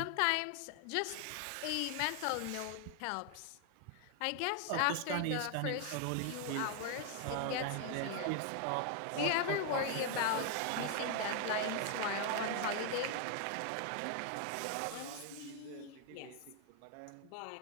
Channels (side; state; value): both; different; correlation 0.00